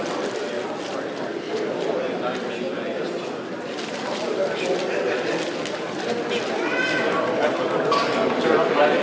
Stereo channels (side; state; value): both; identical; correlation 1.00